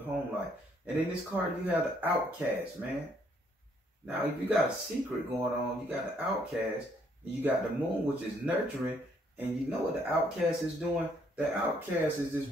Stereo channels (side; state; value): both; normal; correlation 0.68